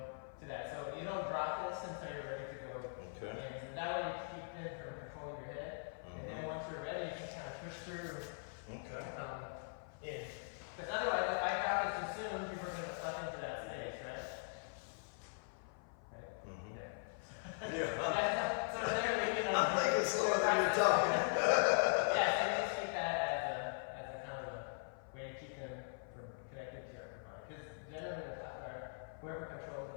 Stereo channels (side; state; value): right; silent; 50 dB below the other